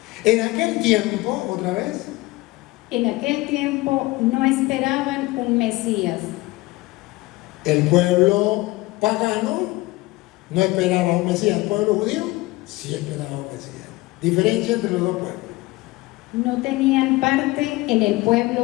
En aquel tiempo, otra vez, en aquel tiempo no esperaban un Mesías, el pueblo pagano no esperaba un Mesías. El pueblo judío sí esperaba un Mesías. Diferencia entre los dos pueblos. no tenían parte en el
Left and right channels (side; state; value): right; quieter; 20.6 dB